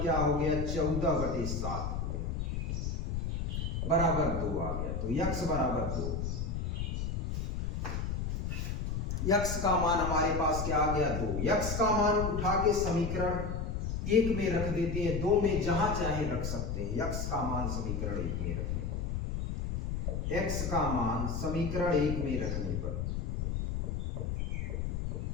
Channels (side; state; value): left; noise; rumble, 2 dB below the sound